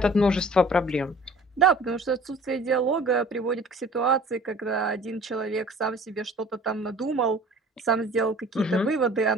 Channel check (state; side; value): normal; both; correlation 0.48